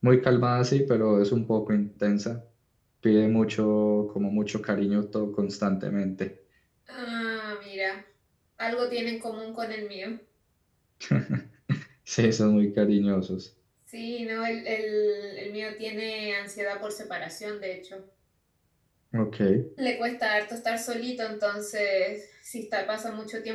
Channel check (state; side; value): identical; both; correlation 1.00